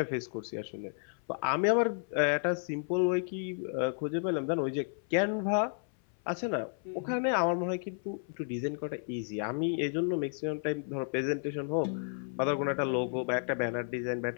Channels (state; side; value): silent; right; 56 dB below the other